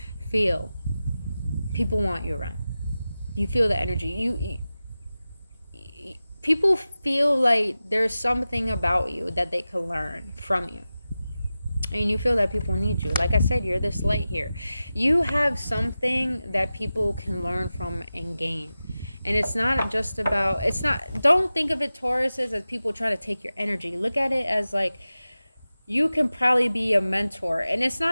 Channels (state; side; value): inverted; both; correlation -0.95